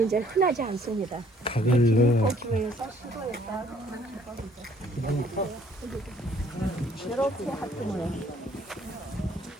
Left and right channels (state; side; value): normal; both; correlation 0.61